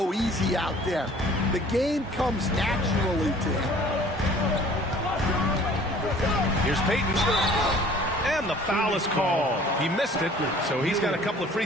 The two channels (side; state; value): both; normal; correlation 0.51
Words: easy out there. The game comes naturally to him. Here's Payton. And the foul is called. He missed it, so he's got a couple of free